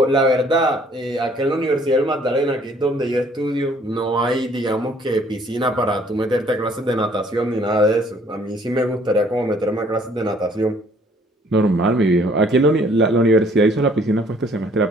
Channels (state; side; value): normal; both; correlation 0.60